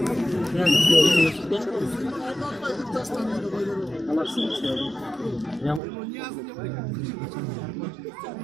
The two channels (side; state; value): left; drops out; at 5.8 s